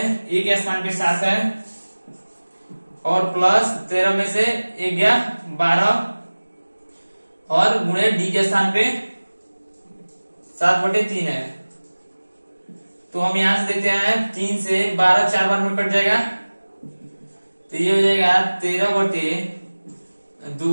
ए के स्थान पे 7 है और प्लस 13 में से 1 गया 12 और गुणे डी के स्थान पे 7/3 है। तो हम यहां से देखते हैं 3 से 12 4 बार में कट जाएगा, तो ये हो जाएगा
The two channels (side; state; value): both; inverted; correlation -1.00